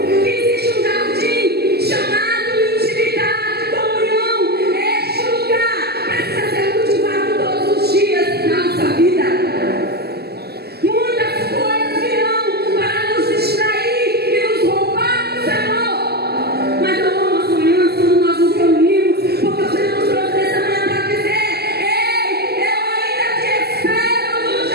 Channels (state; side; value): late; left; 0.47 ms